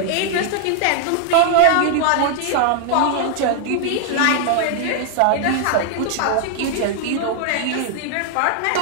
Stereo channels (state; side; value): different; both; correlation 0.00